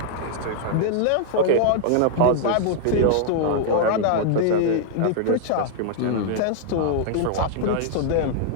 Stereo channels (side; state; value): both; different; correlation -0.01